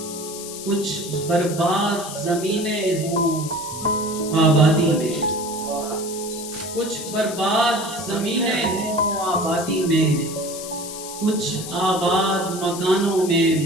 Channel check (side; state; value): left; noise; hiss, 10 dB below the sound